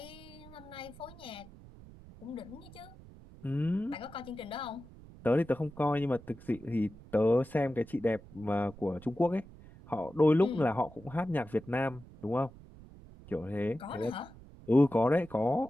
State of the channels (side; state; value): right; noise; rumble, 19 dB below the sound